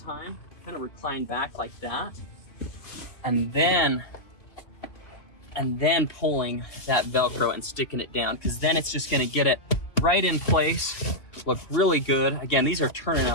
Kind of recline back like that. And then pulling that Velcro and sticking it down, because then it's just gonna get it right in place, look really good. Again, these are turning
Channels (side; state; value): right; late; 2.5 ms